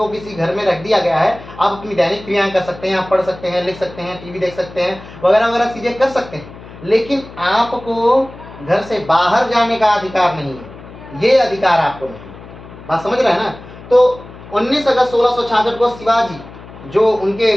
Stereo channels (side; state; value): left; noise; hum, 17 dB below the sound